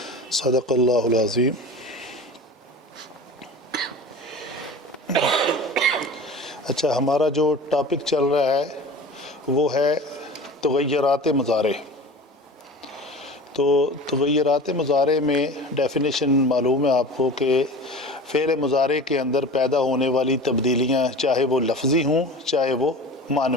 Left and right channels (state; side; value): normal; both; correlation 0.36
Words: صدق اللہ العظیم۔ اچھا، ہمارا جو ٹاپک چل رہا ہے وہ ہے تغیرات مضارع۔ تو تغیرات مضارع میں ڈیفینیشن معلوم ہے آپ کو کہ فعل مضارع کے اندر پیدا ہونے والی تبدیلیاں چاہے وہ لفظی ہوں چاہے وہ